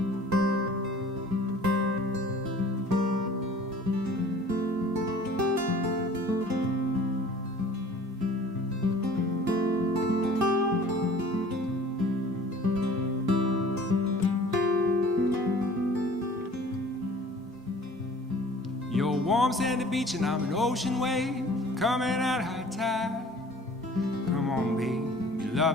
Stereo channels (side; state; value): both; normal; correlation 0.48